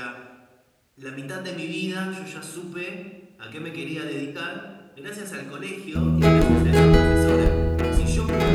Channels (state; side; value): identical; both; correlation 1.00